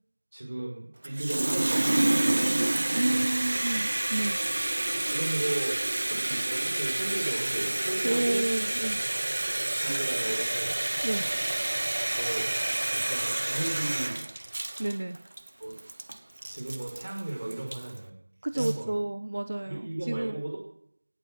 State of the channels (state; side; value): inverted; both; correlation -1.00